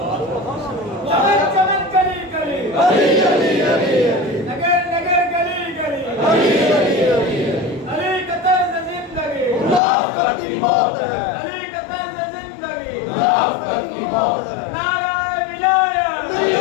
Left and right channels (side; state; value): right; drops out; at 9.8 s